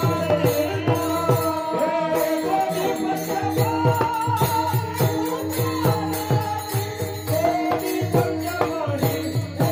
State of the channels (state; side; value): identical; both; correlation 1.00